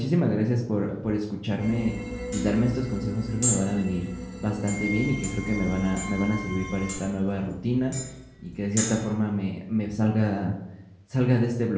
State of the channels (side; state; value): both; identical; correlation 1.00